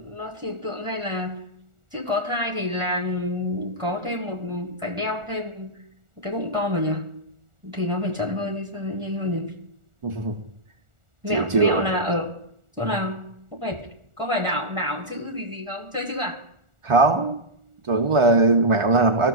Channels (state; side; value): late; left; 1.4 ms